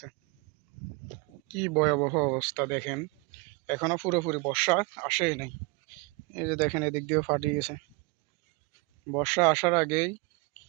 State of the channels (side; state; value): left; quieter; 28.5 dB